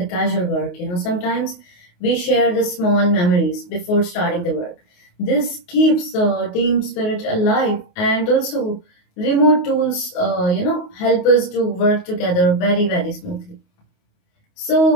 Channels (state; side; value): late; right; 28 ms